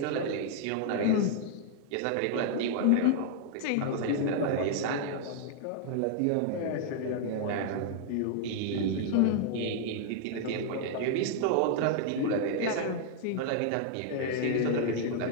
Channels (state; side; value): different; both; correlation 0.00